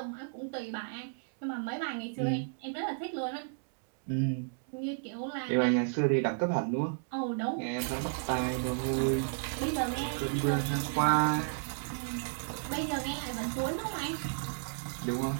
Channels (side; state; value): left; silent; digital silence